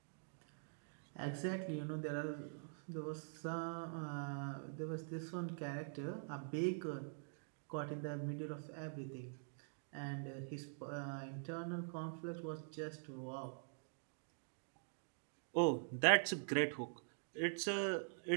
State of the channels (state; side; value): silent; left; digital silence